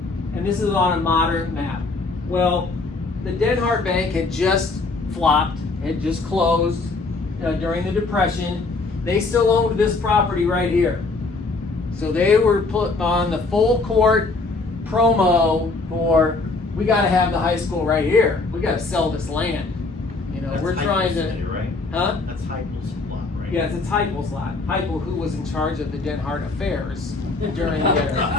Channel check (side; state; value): right; quieter; 3.6 dB